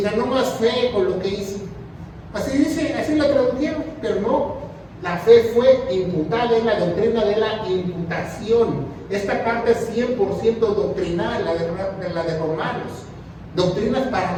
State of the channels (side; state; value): both; identical; correlation 1.00